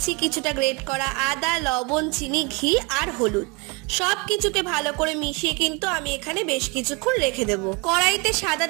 কিছুটা গ্রেট করা আদা, লবণ, চিনি, ঘি আর হলুদ। সব কিছুকে ভালো করে মিশিয়ে কিন্তু আমি এখানে বেশ কিছুক্ষণ রেখে দেবো। কড়াইতে সাদা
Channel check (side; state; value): left; quieter; 29.3 dB